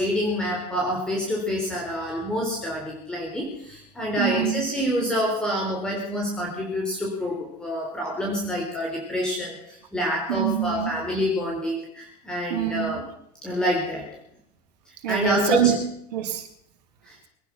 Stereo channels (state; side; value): normal; both; correlation 0.38